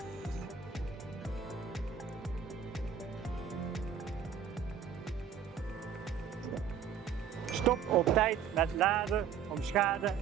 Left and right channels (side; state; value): left; quieter; 7.8 dB